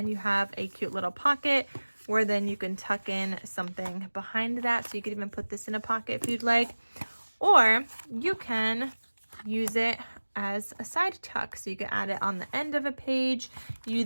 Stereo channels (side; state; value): both; inverted; correlation -1.00